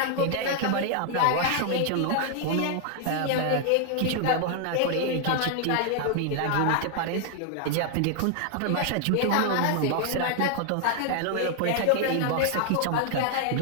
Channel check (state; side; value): different; both; correlation 0.00